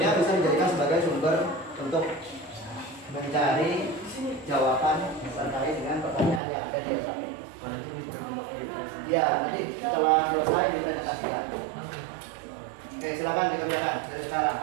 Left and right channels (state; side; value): drops out; left; at 6.4 s